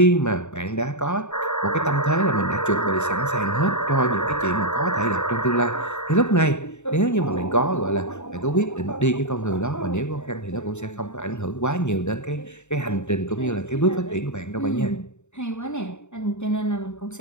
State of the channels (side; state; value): right; late; 0.83 ms